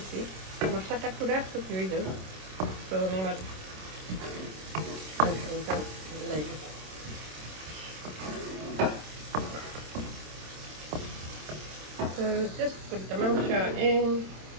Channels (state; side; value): late; left; 26 ms